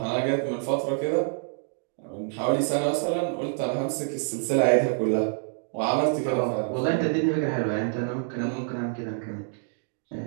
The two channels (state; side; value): silent; left; digital silence